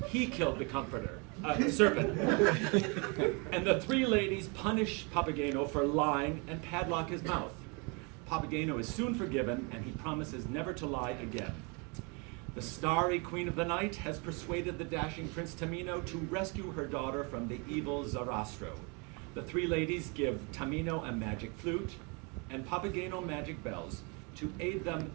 he killed the serpent. And the three ladies punish Papageno for lying and padlock his mouth. Papageno is soon forgiven, and he promises never to lie again. The starry queen of the night has persuaded the dashing Prince Tamino to rescue her daughter from the evil Zarastro. The three ladies give Tamino a magic flute and Papageno magic bells to aid them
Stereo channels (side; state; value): left; quieter; 32.0 dB